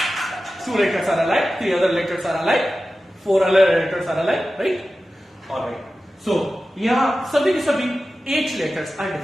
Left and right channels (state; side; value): normal; both; correlation 0.94